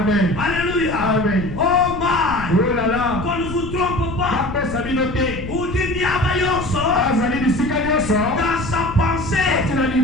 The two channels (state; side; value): noise; left; rumble, 10 dB below the sound